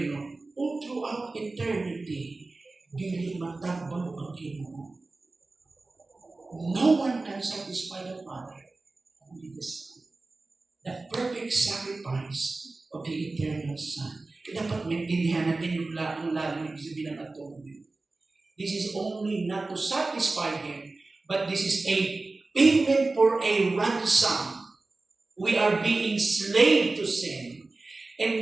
all throughout eternity, dili matagbaw ang Ginoo. No one can satisfy the Father, only the Son. The perfect sacrifice of the eternal Son. Kaya dapat maintindihan natin yung lalim ibig sabihin ng atonement. This is only not to satisfy Him, but this is a payment for a ransom. We are being slave to sin.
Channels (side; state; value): left; quieter; 3.4 dB